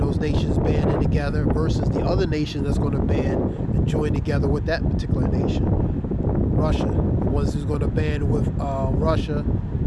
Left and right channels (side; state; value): both; identical; correlation 1.00